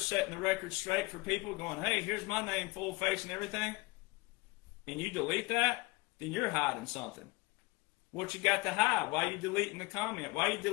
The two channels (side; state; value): right; quieter; 23.4 dB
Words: the record straight for people, going, hey, here's my name, full face and everything, and you delete that, then you're hiding something. What you got to hide? Why are you deleting the comment? Why are you